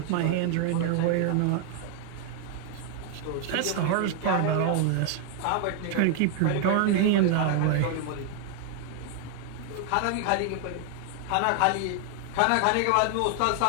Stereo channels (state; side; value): different; both; correlation 0.00